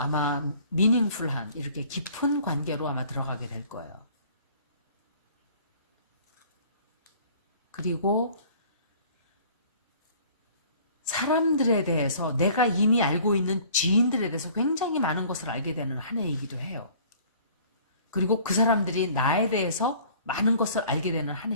meaningful한 이렇게 깊은 관계로 아마 들어가게 될 거예요. 그리고 사람들에 대해서 내가 이미 알고 있는 지인들에 대해서 굉장히 많은 것을 알게 되는 한 해이기도 해요. 그리고 그 사람들이 나에 대해서 많은 것을 알게 되는 한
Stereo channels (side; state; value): both; inverted; correlation -0.52